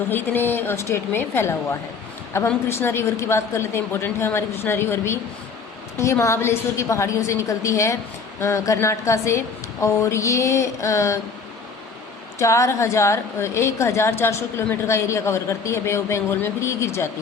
है इतने स्टेट में फैला हुआ है। अब हम कृष्णा रिवर की बात कर लेते हैं। इंपॉर्टेंट है हमारी कृष्णा रिवर भी। ये महाबलेश्वर की पहाड़ियों से निकलती है, कर्नाटका से, और ये 1400 किलोमीटर का एरिया कवर करती है बे ऑफ बंगाल में, फिर ये गिर जाती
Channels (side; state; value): right; quieter; 5.1 dB